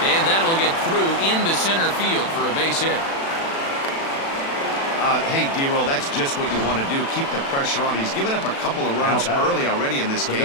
that'll get through into center field for a base hit. Hey, D-Roll, that's just what you want to do. Keep the pressure on. He's given up a couple of runs early already in this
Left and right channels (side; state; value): right; late; 36 ms